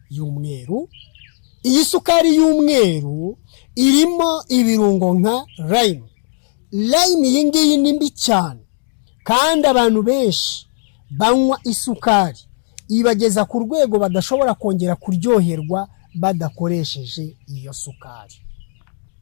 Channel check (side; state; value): right; silent; digital silence